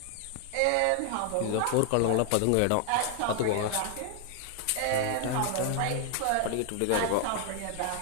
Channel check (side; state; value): both; different; correlation 0.00